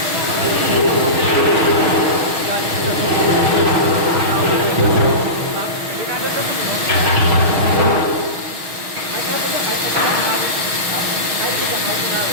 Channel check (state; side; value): late; left; 6.4 ms